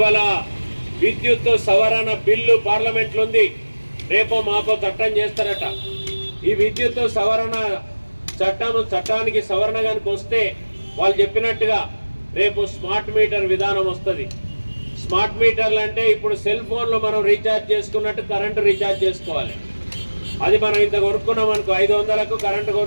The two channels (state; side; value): inverted; both; correlation -1.00